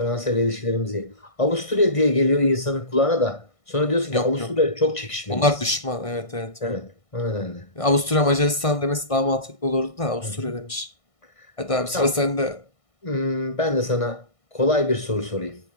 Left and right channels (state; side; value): late; right; 1.6 ms